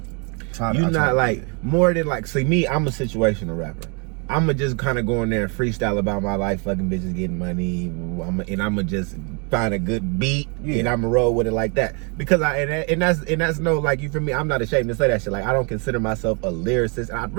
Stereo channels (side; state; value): left; quieter; 34.5 dB